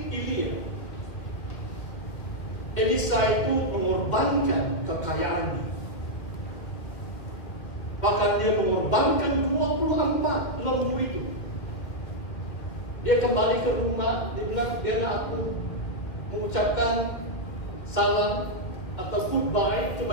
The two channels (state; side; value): late; right; 1.8 ms